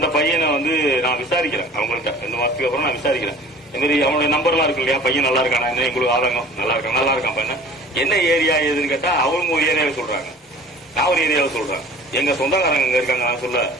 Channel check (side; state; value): both; normal; correlation 0.45